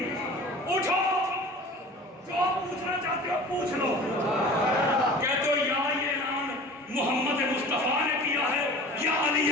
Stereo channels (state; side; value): normal; both; correlation 0.40